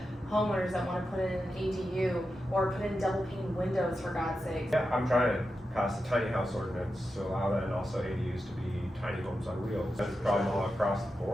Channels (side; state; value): both; normal; correlation 0.90